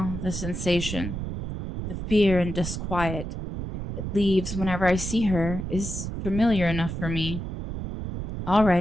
the sensation, the fear and disquiet it leaves whenever I see her is familiar enough for me.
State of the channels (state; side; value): noise; right; rumble, 6 dB below the sound